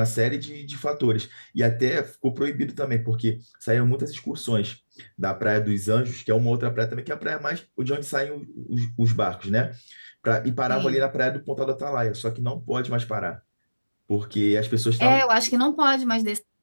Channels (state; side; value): inverted; both; correlation -1.00